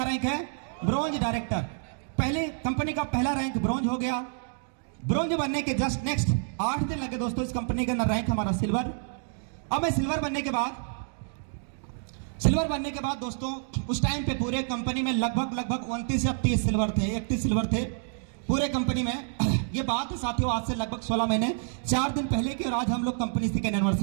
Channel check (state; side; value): silent; left; digital silence